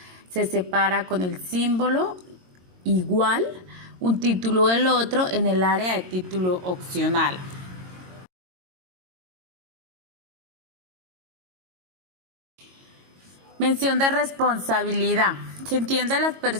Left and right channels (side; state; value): left; late; 22 ms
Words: se separa con el símbolo igual un título del otro en el área de título opcional. Mención de responsabilidad. Se entiende a las